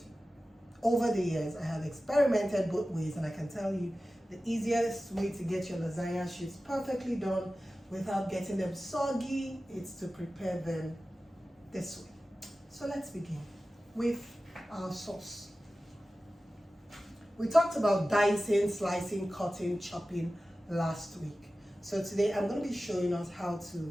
over the years, I have experimented both ways, and I can tell you the easiest way to get your lasagna sheets perfectly done without getting them soggy is to prepare them this way. So let's begin with our sauce. We talked about dicing, slicing, cutting, chopping last week. So today I'm going to be showing us how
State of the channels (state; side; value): normal; both; correlation 0.95